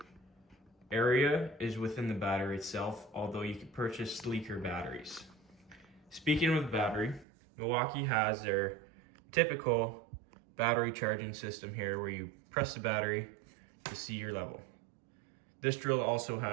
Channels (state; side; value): drops out; left; at 7.2 s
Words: area is within the battery itself, although you could purchase sleeker batteries. Speaking of the battery, Milwaukee has their typical battery charging system here where you press the battery to see your level. This drill also